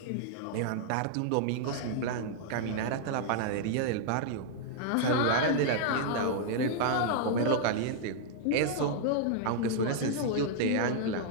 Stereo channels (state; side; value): different; both; correlation -0.01